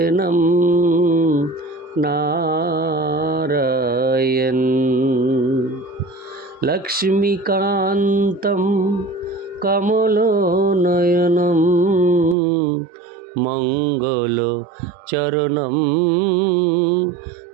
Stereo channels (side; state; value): left; drops out; at 12.4 s